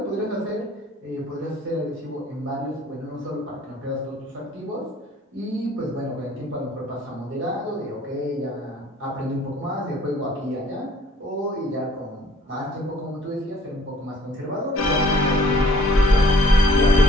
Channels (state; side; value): normal; both; correlation 0.56